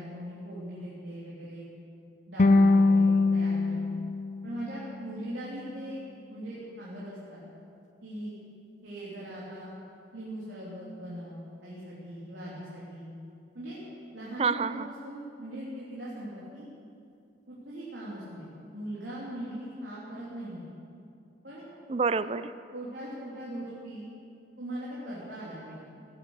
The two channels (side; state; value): both; normal; correlation 0.73